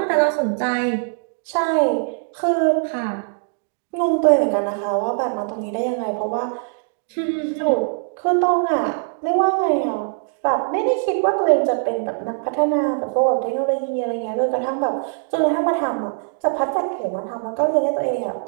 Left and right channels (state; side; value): silent; left; digital silence